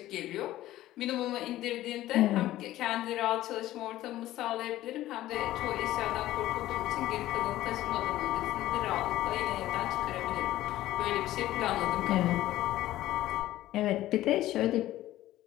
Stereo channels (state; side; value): quieter; right; 14.9 dB